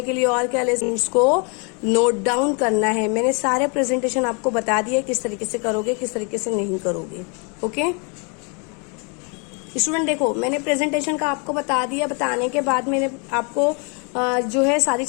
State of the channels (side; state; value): right; quieter; 34.6 dB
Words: के लिए। और क्या ले, इसको नोट डाउन करना है। मैंने सारे प्रेजेंटेशन आपको बता दिए किस तरीके से करोगे, किस तरीके से नहीं करोगे। ओके स्टूडेंट, देखो मैंने प्रेजेंटेशन का आपको बता दिया, बताने के बाद मैंने आपको जो है सारी